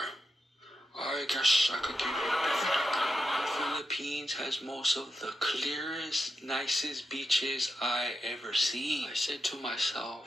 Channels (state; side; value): normal; both; correlation 0.88